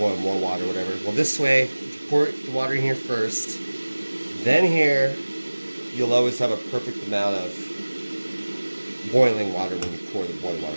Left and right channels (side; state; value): both; inverted; correlation -1.00